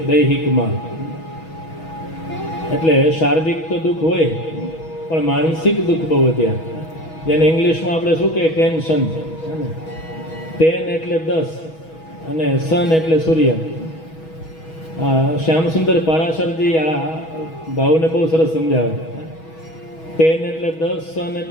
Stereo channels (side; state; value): right; late; 6.2 ms